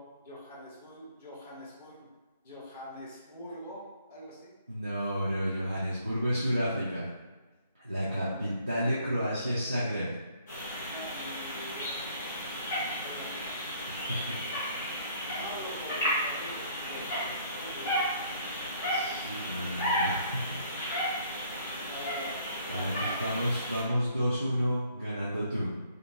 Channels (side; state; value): both; inverted; correlation -0.63